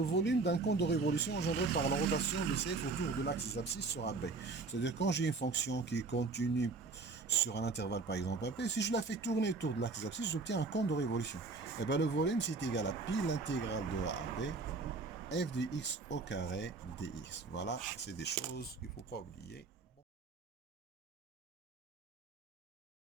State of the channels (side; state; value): left; quieter; 3.9 dB